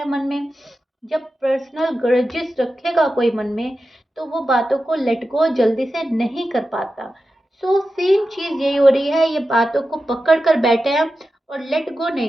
मन में। जब पर्सनल ग्रजेस रखेगा कोई मन में तो वो बातों को लेट गो जल्दी से नहीं कर पाता। सो सेम चीज़ यही हो रही है, ये बातों को पकड़ कर बैठे हैं और लेट गो नहीं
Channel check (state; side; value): normal; both; correlation 0.92